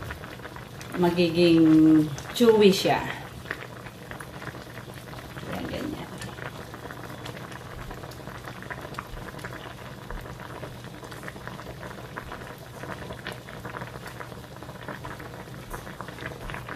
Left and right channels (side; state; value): both; identical; correlation 1.00